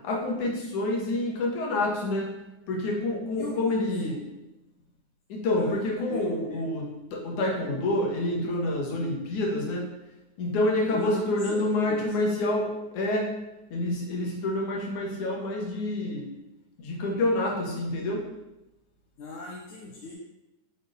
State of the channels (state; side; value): late; right; 9.6 ms